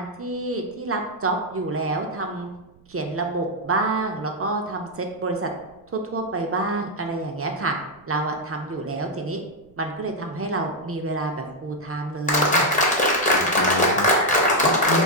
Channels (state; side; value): noise; right; rumble, 29 dB below the sound